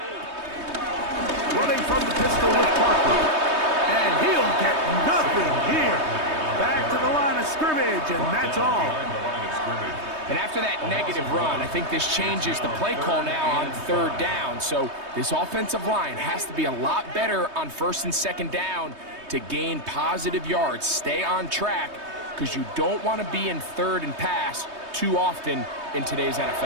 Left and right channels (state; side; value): late; left; 3.2 ms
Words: Running from the pistol with Barkley. And he'll get nothing here. Back to the line of scrimmage, and that's all. And after that negative run, I think this changes the play call now on third down. So this offensive line has to be a lot better on 1st and 2nd down to gain positive yards. Stay on track, because you don't want to be in 3rd and pass too often in today's